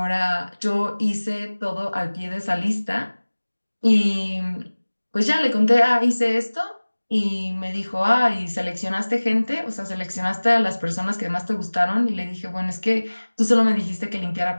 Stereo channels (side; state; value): both; inverted; correlation -1.00